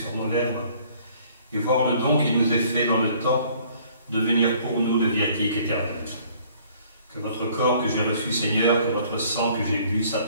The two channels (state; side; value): inverted; both; correlation -0.58